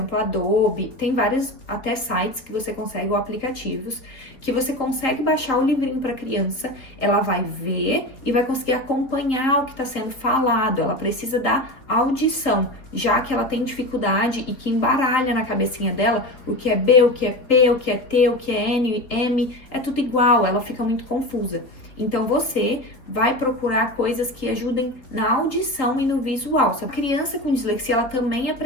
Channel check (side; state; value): right; late; 4.0 ms